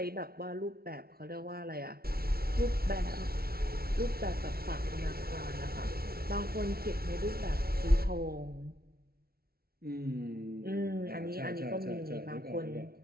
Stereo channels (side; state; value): left; late; 0.44 ms